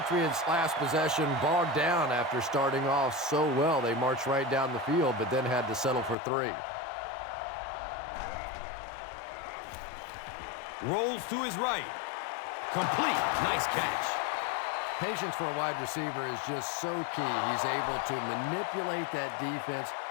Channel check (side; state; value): right; drops out; at 6.2 s